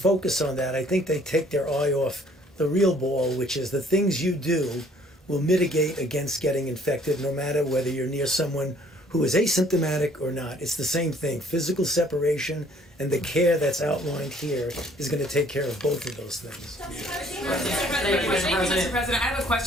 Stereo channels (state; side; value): normal; both; correlation 0.59